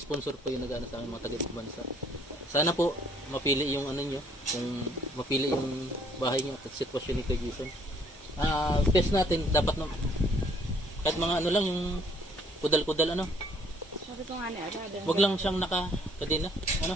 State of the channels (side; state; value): both; normal; correlation 0.62